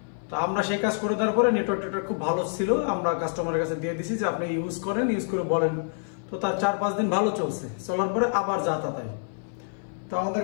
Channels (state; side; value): silent; right; 58 dB below the other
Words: তো আমরা সেই কাজ করে দেওয়ার পরে নেটওয়ার্ক খুব ভালো ছিল, আমরা কাস্টমারের কাছে দিয়ে দিছি যে আপনি ইউজ করে বলেন। তো তার 4-5 দিন ভালো চলছে, চলার পরে আবার যা তা তাই। তো আমাদের